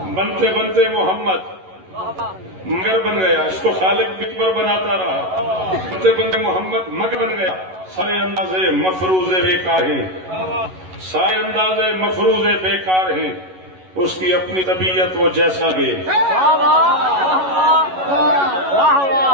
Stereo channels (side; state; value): left; late; 11 ms